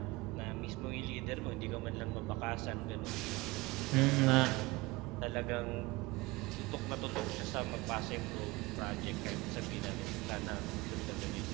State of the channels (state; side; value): quieter; left; 22.2 dB